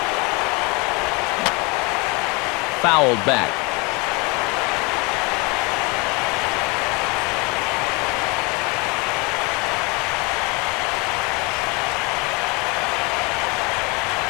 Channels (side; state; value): right; quieter; 27.8 dB